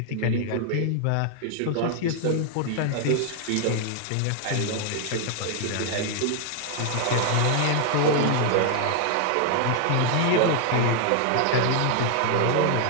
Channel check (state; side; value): different; both; correlation 0.00